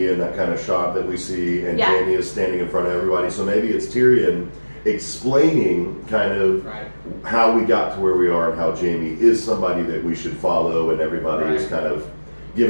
in that kind of shot that we see, and Jaime is standing in front of everybody. So maybe it's Tyrion explaining kind of how we got to where we are and how Jaime is somebody that we should follow, and everybody is kind of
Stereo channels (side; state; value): both; inverted; correlation -1.00